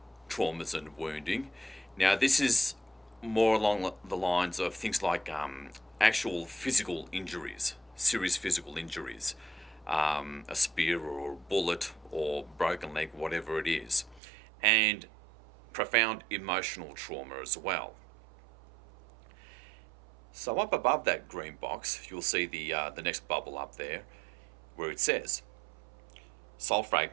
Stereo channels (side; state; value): left; drops out; at 14.2 s